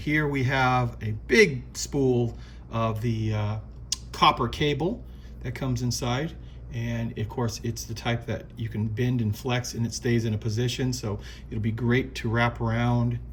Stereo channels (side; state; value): both; identical; correlation 1.00